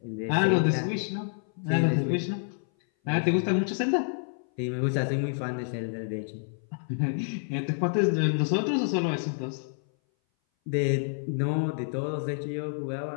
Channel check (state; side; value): silent; right; 58 dB below the other